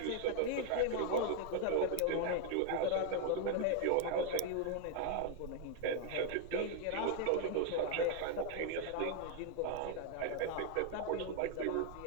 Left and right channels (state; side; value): different; both; correlation 0.01